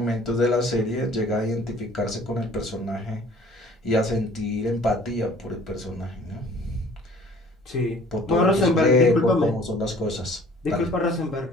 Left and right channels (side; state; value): both; normal; correlation 0.52